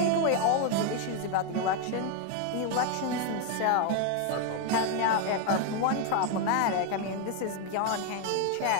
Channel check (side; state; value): both; different; correlation 0.01